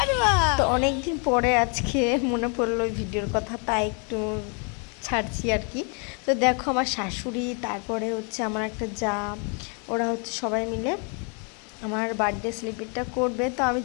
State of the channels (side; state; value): right; quieter; 37.7 dB